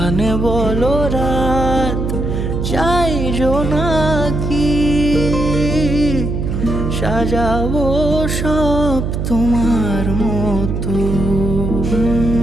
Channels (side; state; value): right; noise; hum, 2 dB below the sound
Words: বলো রাত চাই জোনাকি, সাজাবো সব তোমার মতো।